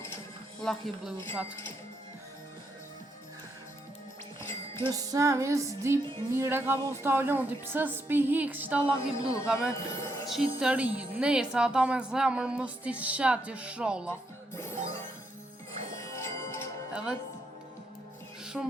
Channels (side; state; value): both; normal; correlation 0.78